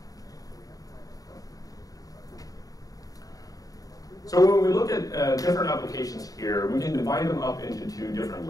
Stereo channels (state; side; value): late; right; 0.18 ms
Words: So when we look at different applications here, we can divide them up into two different